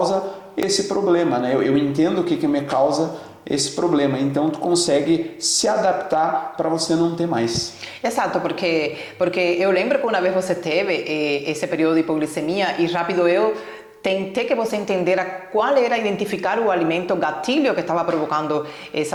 esse problema, né? Eu entendo o que me causa esse problema. Então tu consegue se adaptar para você não ter mais. Exato, porque eu lembro que uma vez você teve esse período de hipoglicemia e rápido eu tentei que você entendera qual era identificar o alimento gatilho que estava provocando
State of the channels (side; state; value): both; identical; correlation 1.00